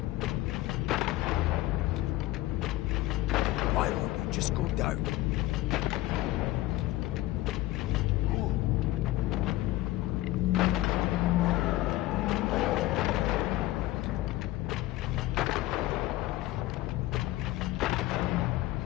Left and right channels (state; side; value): quieter; right; 17.0 dB